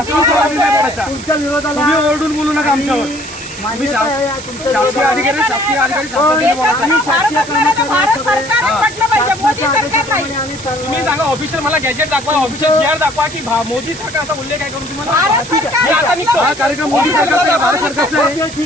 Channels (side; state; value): right; noise; hiss, 14 dB below the sound